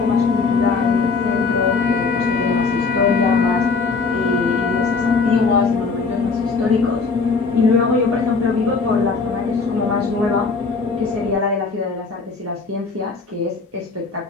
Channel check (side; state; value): right; quieter; 4.4 dB